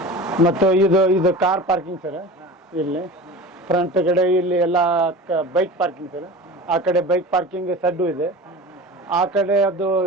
ಮತ್ತು ಇದು ಕಾರ್ ಪಾರ್ಕಿಂಗ್ ಸರ್. ಇಲ್ಲಿ ಫ್ರಂಟ್ ಕಡೆ ಇಲ್ಲಿ ಎಲ್ಲ ಬೈಕ್ ಪಾರ್ಕಿಂಗ್ ಸರ್. ಆ ಕಡೆ ಬೈಕ್ ಪಾರ್ಕಿಂಗ್ ಸಡ್ಡು ಇದೆ. ಆ ಕಡೆ ಅದು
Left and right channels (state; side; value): normal; both; correlation 0.35